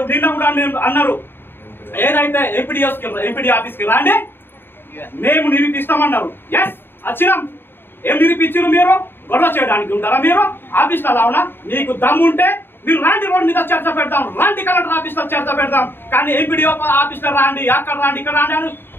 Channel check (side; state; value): right; late; 0.10 ms